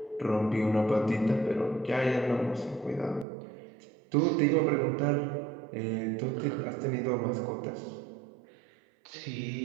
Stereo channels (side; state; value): left; drops out; at 3.2 s